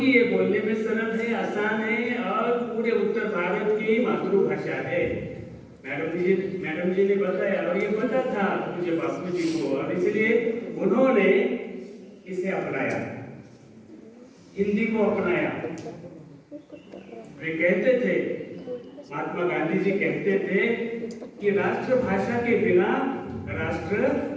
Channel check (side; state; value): both; identical; correlation 1.00